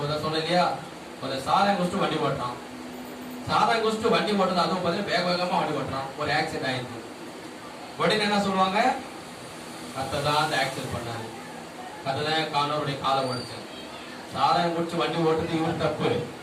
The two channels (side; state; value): both; identical; correlation 1.00